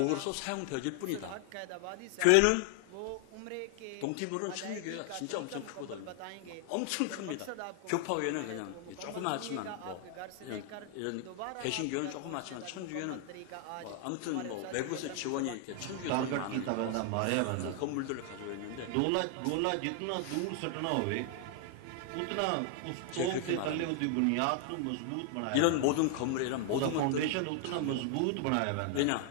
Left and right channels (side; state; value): both; different; correlation 0.00